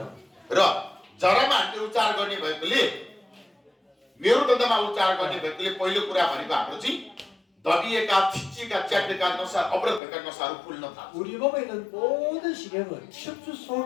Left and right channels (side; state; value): right; drops out; at 10.0 s